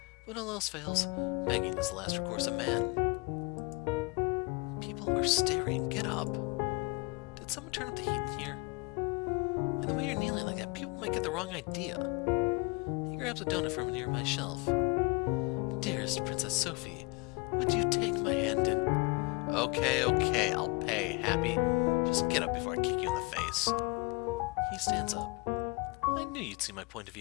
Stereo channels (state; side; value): quieter; right; 27.0 dB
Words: When all else fails, begging is the last recourse of man. People are staring. Get up. Did someone turn up the heat in here? And the way you're kneeling like that, people might get the wrong idea. He grabs a donut from a nearby shelf. Dearest Princess Sophie, would you take my hand and... Okay, I'll pay, Happy. Just get up before I kick you in the face. He stands up. I knew you'd see my point of